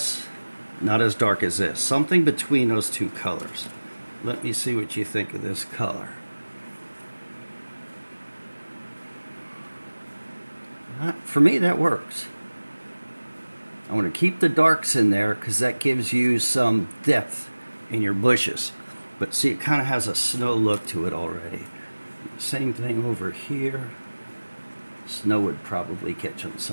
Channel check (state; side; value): inverted; both; correlation -1.00